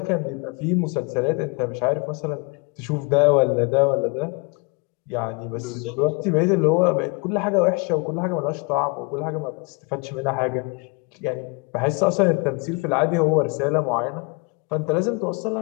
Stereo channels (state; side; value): quieter; right; 31.0 dB